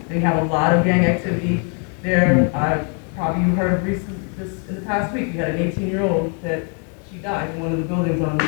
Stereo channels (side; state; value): right; quieter; 38.0 dB